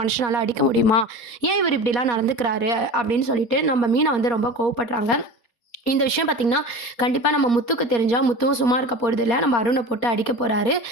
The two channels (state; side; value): late; right; 4.3 ms